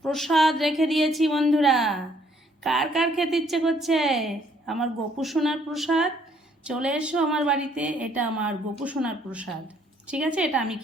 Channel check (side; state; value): both; normal; correlation 0.65